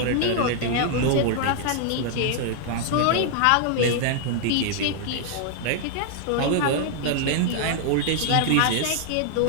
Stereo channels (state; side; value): different; both; correlation -0.01